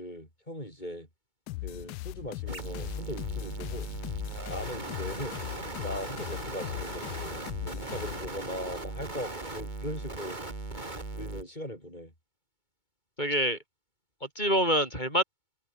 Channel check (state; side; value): late; right; 2.2 ms